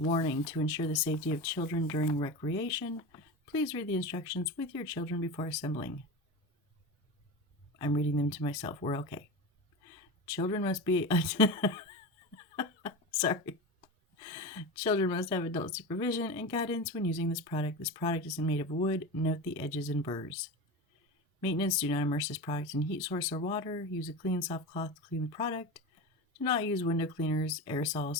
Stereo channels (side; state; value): both; normal; correlation 0.25